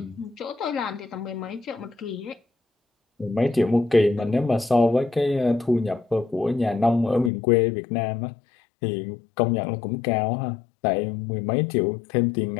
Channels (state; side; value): drops out; right; at 7.3 s